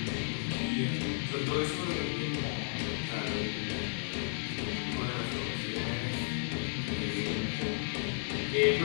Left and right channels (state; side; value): silent; right; 55 dB below the other